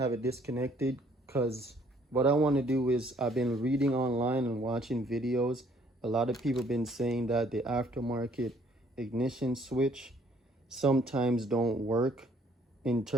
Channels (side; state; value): both; normal; correlation 0.62